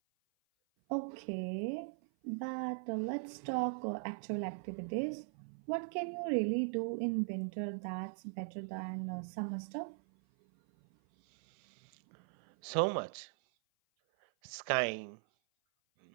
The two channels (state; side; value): silent; left; 51 dB below the other